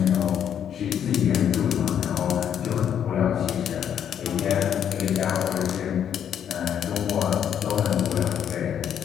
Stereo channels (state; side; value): quieter; right; 9.1 dB